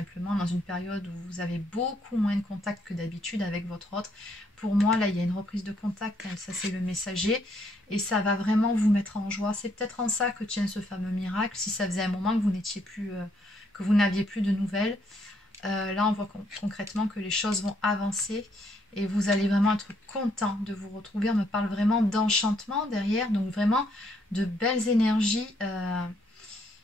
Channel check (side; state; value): both; normal; correlation 0.71